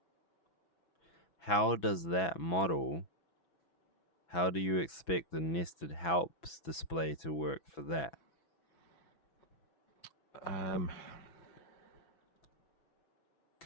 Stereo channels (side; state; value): right; late; 6.0 ms